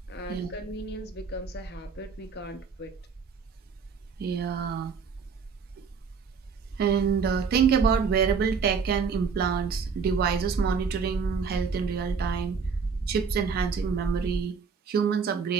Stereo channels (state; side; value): quieter; left; 5.6 dB